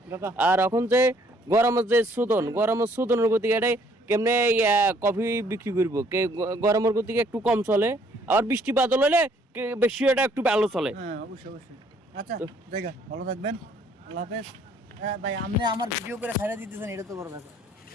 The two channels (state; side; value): normal; both; correlation 0.63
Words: আর এখন যে গরমের শোধনের গতিকে এটাই কেমনে কফি বিক্রি করবো, গরমের গতিকে একটু কম চলে, আবার বৃষ্টি বাদল হলে বেশি এটা একটু ভালো চলে। হ্যাঁ, অবশ্যই অবশ্যই। আচ্ছা, জায়গা ভালো থাকবেন, আল্লাহ হাফেজ। হ্যাঁ ভাই, আপনি আমার ভিডিও করে ছাড়া দিতেছেন, এটা তো বড় ব্যাপার।